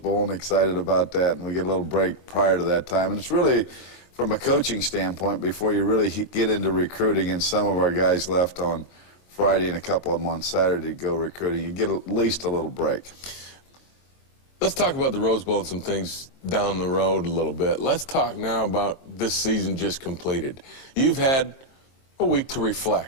and excited about that, and we get a little break prior to that time. And it's really, from a coaching standpoint, before you really get into recruiting, and some of our guys left on Friday and a couple of them on Saturday to go recruiting, you get at least a little break. Let's talk about the Rose Bowl and some things down the road a little bit. Let's talk now about this season just completed. You've had a week to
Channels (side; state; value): right; late; 23 ms